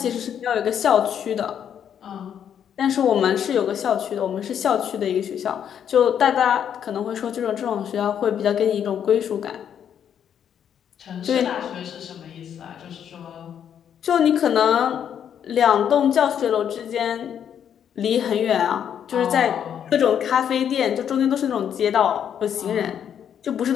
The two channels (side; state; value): right; quieter; 8.8 dB